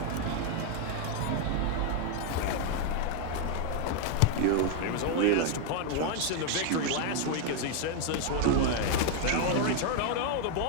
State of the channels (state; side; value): different; both; correlation 0.00